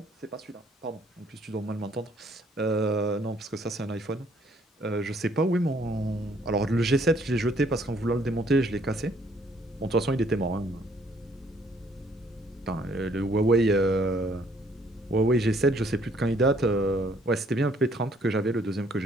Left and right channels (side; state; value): both; normal; correlation 0.64